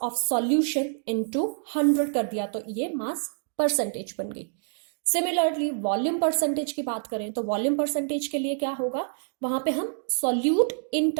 of solution into 100 कर दिया तो ये मास परसेंटेज बन गई। सिमिलरली वॉल्यूम परसेंटेज की बात करें तो वॉल्यूम परसेंटेज के लिए क्या होगा, वहां पे हम solute in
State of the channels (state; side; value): silent; left; digital silence